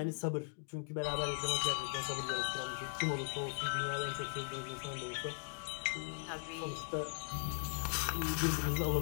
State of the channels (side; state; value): right; silent; digital silence